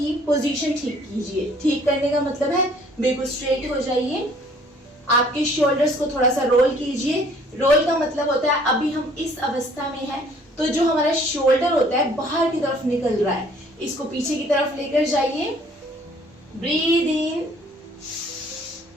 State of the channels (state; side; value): normal; both; correlation 0.58